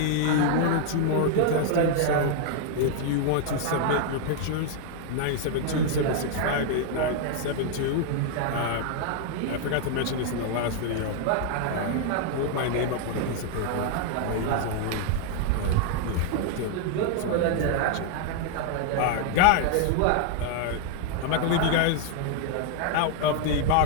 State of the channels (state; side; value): different; both; correlation 0.00